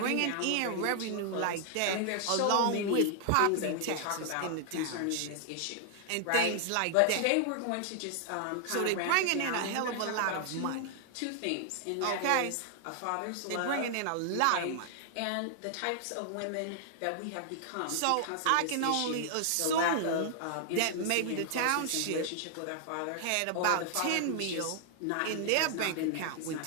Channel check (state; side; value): different; both; correlation 0.00